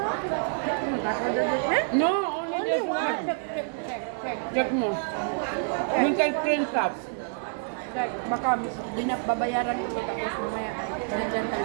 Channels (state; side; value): silent; left; 60 dB below the other